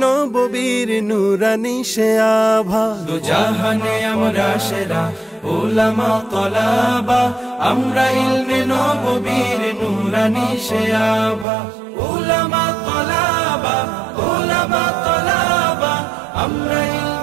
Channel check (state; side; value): drops out; left; at 11.5 s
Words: নববীর নূরানি সে আভা। দুজাহানে আমরা সেরা ওলামা তলাবা, আমরা ইলমে নববীর নূরানি সে আভা। ওলামা তলাবা, ওলামা তলাবা, আমরা